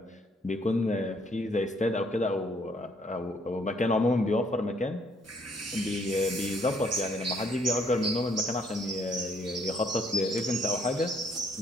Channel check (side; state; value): both; normal; correlation 0.66